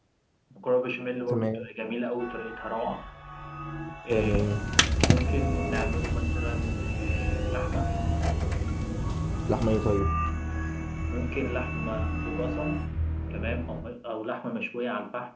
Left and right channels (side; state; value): both; identical; correlation 1.00